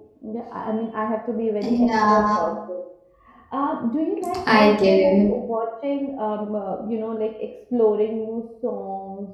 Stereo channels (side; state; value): both; identical; correlation 1.00